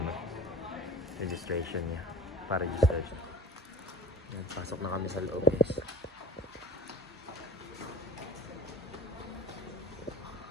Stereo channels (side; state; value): both; normal; correlation 0.39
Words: registration niya. Pa-register siya. Yan, pasok na kami sa loob guys.